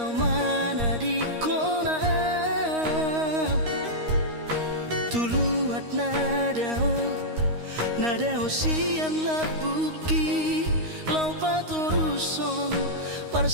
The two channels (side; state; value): left; late; 13 ms